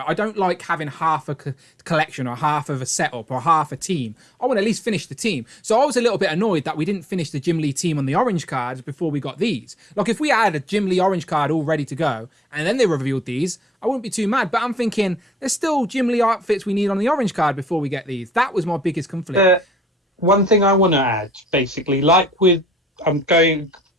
I don't like having half a collection or half of a setup or half a team. I want to at least finish the team. So I was a little bit annoyed that we didn't finish the Jim Lee team on the orange cards before we got these. Like, if we had a Jim Lee orange card all ready to go and then they revealed these, I wouldn't be too mad. But I'm thinking there's still Jim Lee outfits we need on the orange card before we get these. That was my biggest conflict. One thing I want to add, basically, like playing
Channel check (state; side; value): normal; both; correlation 0.67